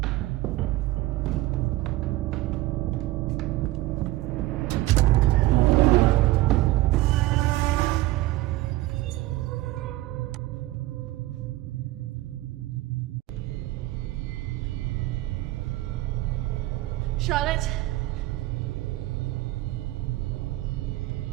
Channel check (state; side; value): quieter; left; 17.5 dB